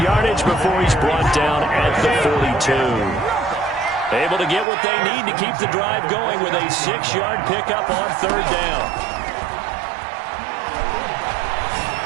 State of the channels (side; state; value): left; drops out; at 4.7 s